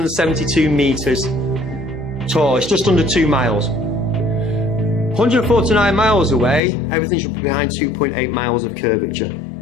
meters tall. It's just under 2 miles. 149 miles away, everything should be behind 2.8 miles of curvature.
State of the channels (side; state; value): right; drops out; at 6.6 s